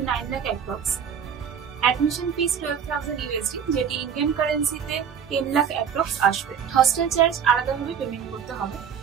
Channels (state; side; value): quieter; left; 7.6 dB